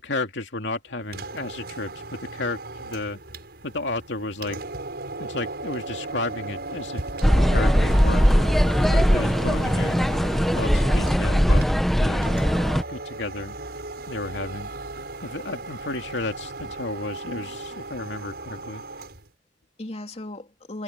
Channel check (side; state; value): both; normal; correlation 0.81